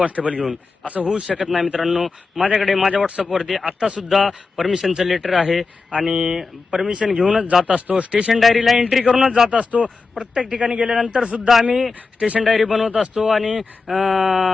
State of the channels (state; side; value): quieter; right; 4.3 dB